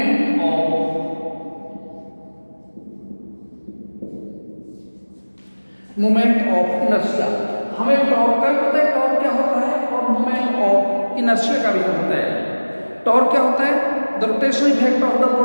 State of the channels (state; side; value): inverted; both; correlation -1.00